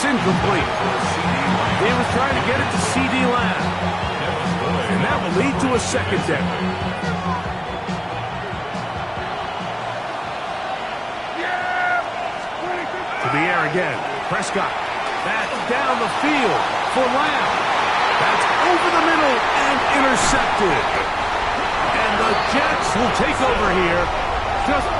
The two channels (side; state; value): both; identical; correlation 1.00